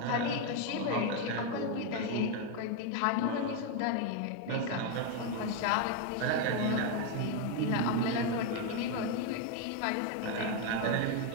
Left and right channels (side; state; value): both; different; correlation 0.01